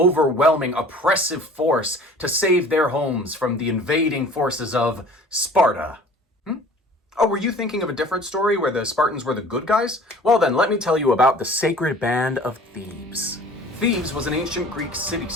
oppressive force to save their homes from the invading forces of Sparta. Oh, were you thinking of a different story where the Spartans were the good guys? Well then, let me tell you about the sacred band of Thebes. Thebes was an ancient Greek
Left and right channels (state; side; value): normal; both; correlation 0.47